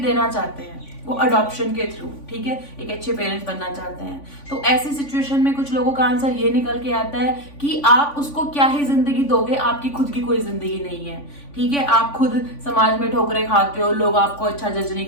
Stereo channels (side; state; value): right; late; 3.5 ms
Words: चाहते हैं, वो अडॉप्शन के थ्रू, ठीक है, एक अच्छे पेरेंट्स बनना चाहते हैं। तो ऐसी सिचुएशन में कुछ लोगों का आंसर ये निकल के आता है कि आप उसको क्या ही जिंदगी दोगे, आपकी खुद की कोई जिंदगी नहीं है, ठीक है। आप खुद समाज में ठोकरें खाते हो, लोग आपको अच्छा जज नहीं